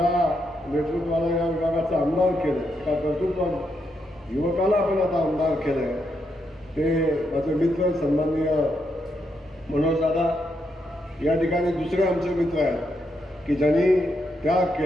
नेतृत्वाला या विभागाचं आमदार केलं, त्या कर्तृत्वानं युवकाला आपण आता आमदार केलं, ते माझे मित्र सन्माननीय मनोज दादा या ठिकाणी दुसरे आमचे मित्र आहेत की ज्यांनी त्याग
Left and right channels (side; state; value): both; normal; correlation 0.80